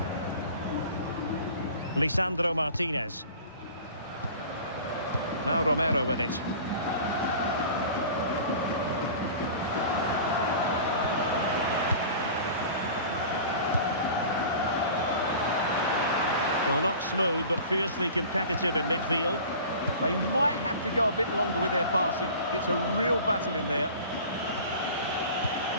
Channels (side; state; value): both; inverted; correlation -0.41